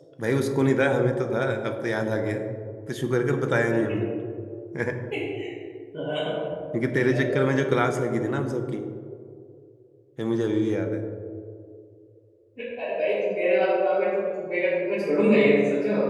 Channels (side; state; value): both; identical; correlation 1.00